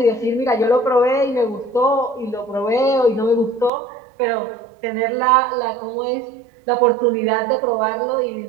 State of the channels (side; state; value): left; drops out; at 3.7 s